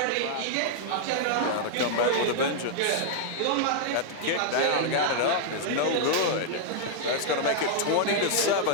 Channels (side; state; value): both; different; correlation -0.01